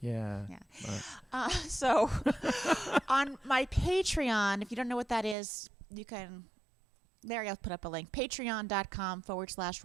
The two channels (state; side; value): drops out; left; at 5.4 s